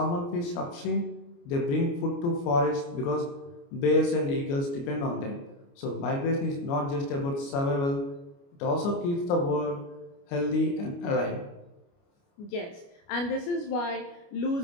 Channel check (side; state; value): right; late; 29 ms